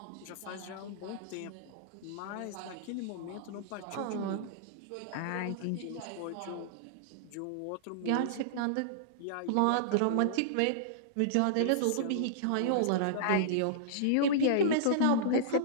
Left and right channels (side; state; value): both; different; correlation -0.02